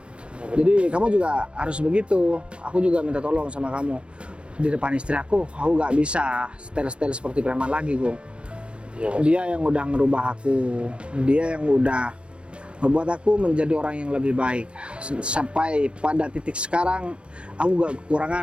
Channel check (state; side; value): late; left; 0.058 ms